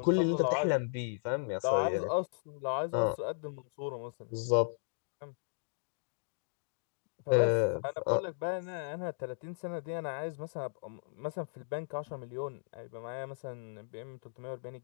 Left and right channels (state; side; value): silent; right; digital silence